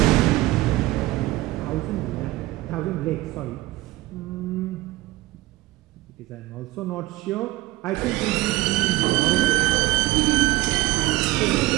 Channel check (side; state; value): left; quieter; 18.4 dB